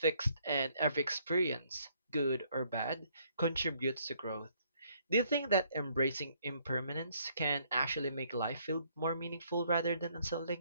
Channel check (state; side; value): inverted; both; correlation -0.67